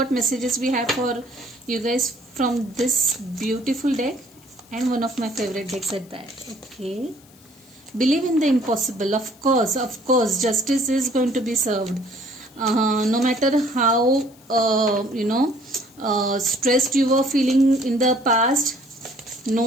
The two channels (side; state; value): left; noise; hiss, 27 dB below the sound